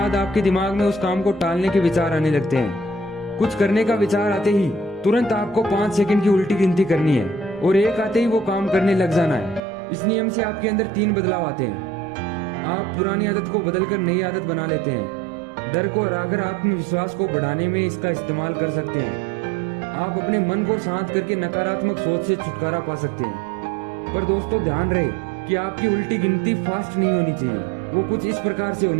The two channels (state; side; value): drops out; left; at 9.6 s